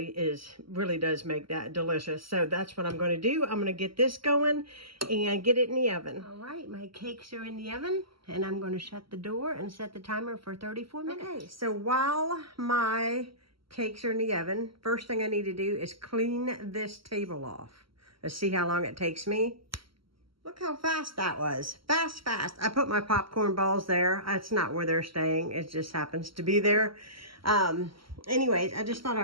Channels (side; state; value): left; late; 0.74 ms